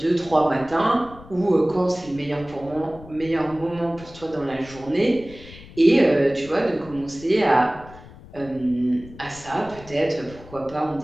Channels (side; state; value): left; noise; rumble, 19 dB below the sound